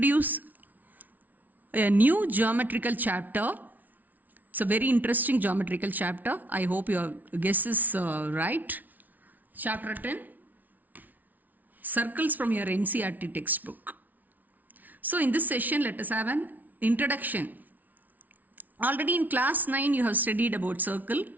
a new geometrical chapter. It's a very interesting geometrical chapter. I hope your guess is right. Chapter 10, Circles from your NCERT textbook. So in this session, let us have an introduction. Already in class 9 you have studied about circle.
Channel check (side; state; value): left; late; 0.079 ms